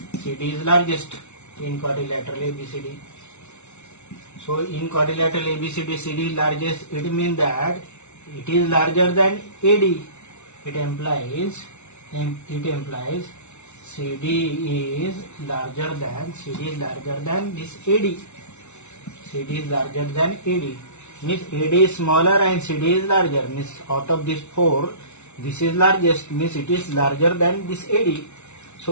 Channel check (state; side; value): late; right; 0.82 ms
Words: CD is largest in quadrilateral ABCD. So in quadrilateral ABCD, CD is largest. It means that it is larger than AD. It implies CD is larger than this AD. CD is larger than AD. Means AD is smaller and CD is larger. Means out of these four, this is largest. Means it is larger than this AD.